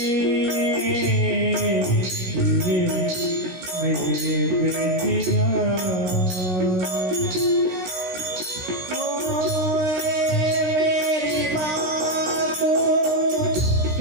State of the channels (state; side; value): late; left; 16 ms